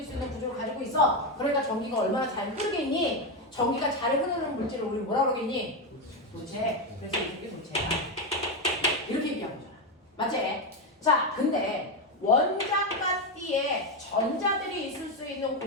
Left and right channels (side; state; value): both; normal; correlation 0.10